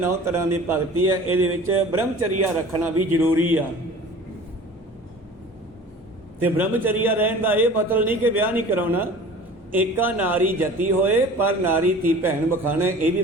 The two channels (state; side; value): normal; both; correlation 0.42